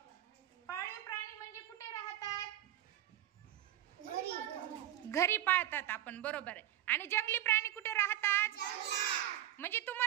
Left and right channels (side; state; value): left; quieter; 12.6 dB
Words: पाळीव प्राणी म्हणजे कुठे राहतात? घरी पाळतात आपण, बरोबर आहे। आणि जंगली प्राणी कुठे राहतात? जंगलात। म्हणजे